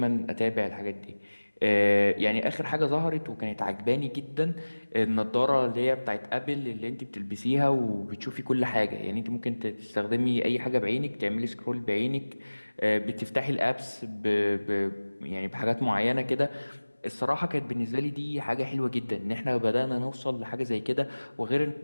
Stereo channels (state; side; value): inverted; both; correlation -1.00